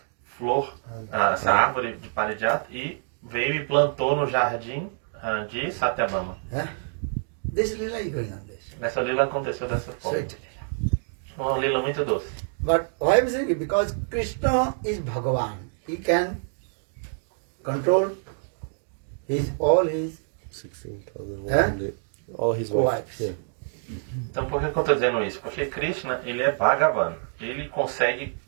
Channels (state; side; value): silent; left; digital silence